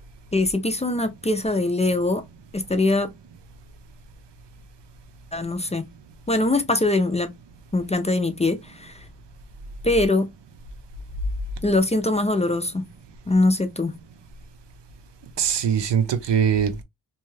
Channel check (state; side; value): normal; both; correlation 0.57